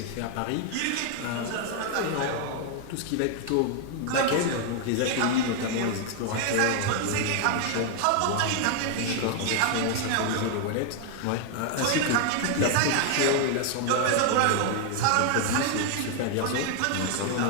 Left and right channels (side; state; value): both; different; correlation 0.00